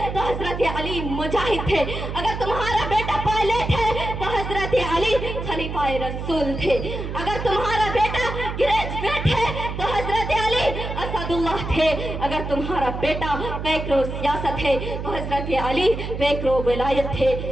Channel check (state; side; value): noise; right; hum, 6 dB below the sound